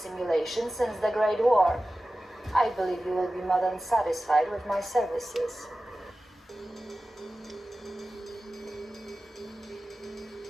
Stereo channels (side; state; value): both; normal; correlation 0.95